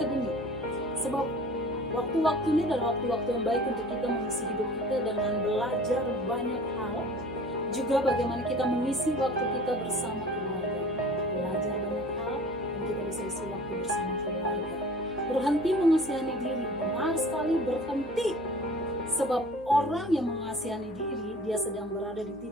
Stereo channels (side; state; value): right; noise; hum, 21 dB below the sound